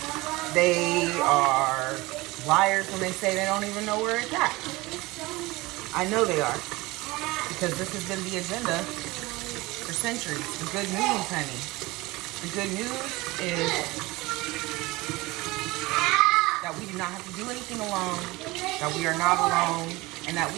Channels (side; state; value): left; quieter; 21.6 dB